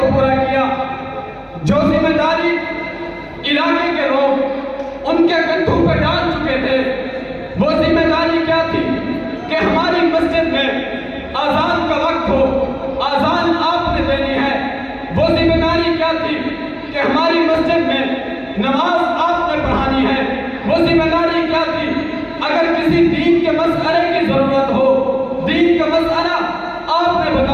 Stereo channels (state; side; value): identical; both; correlation 1.00